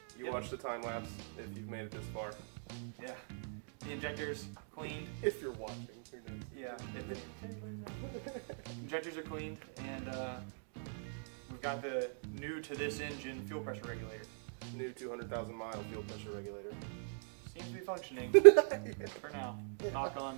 You Yep. watch the time lapse if you've made it this far. Yeah. The injector's cleaned. If you're watching, who knows? Yeah. Injectors are cleaned, and we've got the new to this engine fuel pressure regulator. New 200,000 mile fuel pressure regulator. Seems to be functioning for now. Knock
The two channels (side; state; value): left; silent; digital silence